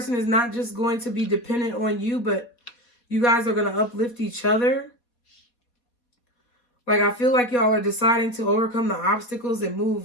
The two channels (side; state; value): right; late; 4.1 ms